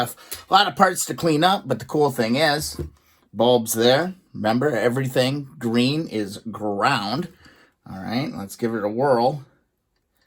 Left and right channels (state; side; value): identical; both; correlation 1.00